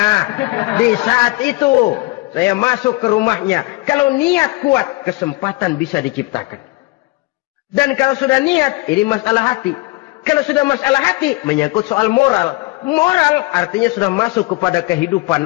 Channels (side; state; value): right; quieter; 22.7 dB